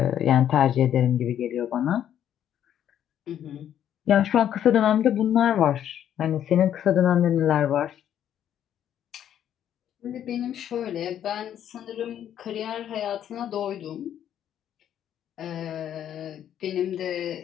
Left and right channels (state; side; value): quieter; right; 10.2 dB